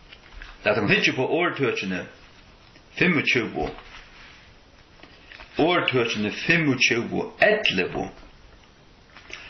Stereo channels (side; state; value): both; identical; correlation 1.00